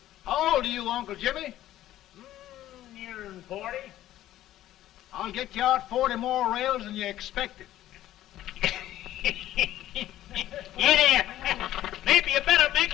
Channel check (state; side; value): quieter; right; 13.5 dB